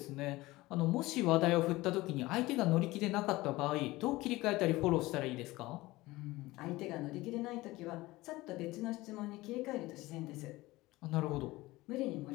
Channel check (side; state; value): right; quieter; 19.5 dB